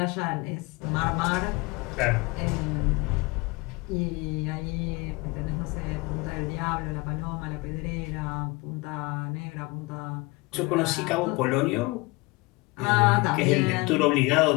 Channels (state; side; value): quieter; right; 24.5 dB